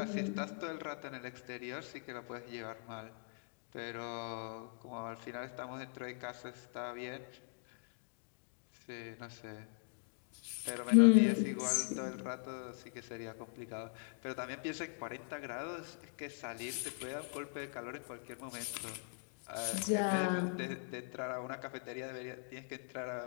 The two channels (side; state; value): right; silent; digital silence